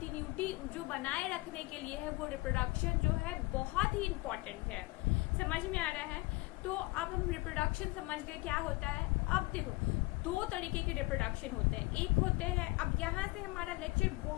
जो बनाए रखने के लिए है वो रिप्रोडक्शन जो है बहुत ही इम्पोर्टेंट है। समझ में आ रहा है। तो अब हम रिप्रोडक्शन समझ गए क्या होता है। अब देखो दो तरीके के रिप्रोडक्शन होते हैं। एक होते हैं, अब यहाँ से हमारा लेक्चर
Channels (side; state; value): right; quieter; 23.2 dB